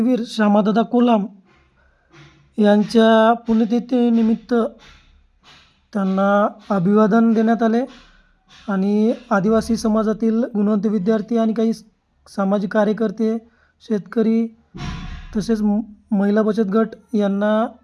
श्यामादादा कोलाम यांच्या पुण्यतिथीनिमित्त त्यांना अभिवादन देण्यात आले आणि आदिवासी समाजातील गुणवंत विद्यार्थी आणि काही सामाजिक कार्यकर्ते, शेतकरी तसेच महिला बचत गट यांना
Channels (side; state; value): both; identical; correlation 1.00